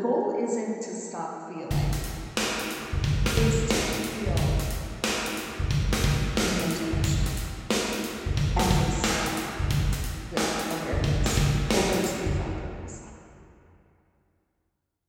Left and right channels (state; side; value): identical; both; correlation 1.00